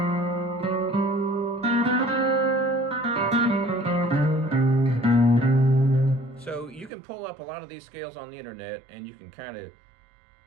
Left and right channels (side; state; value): left; drops out; at 6.9 s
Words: So you can pull up a lot of these scales on the internet and you can kind of